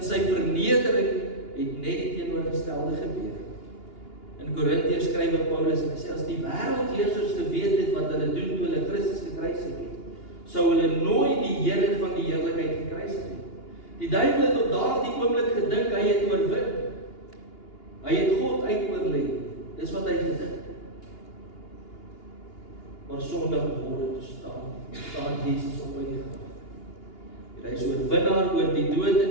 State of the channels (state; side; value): late; right; 2.8 ms